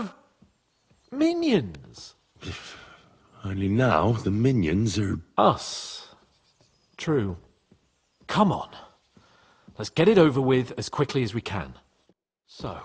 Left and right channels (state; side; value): identical; both; correlation 1.00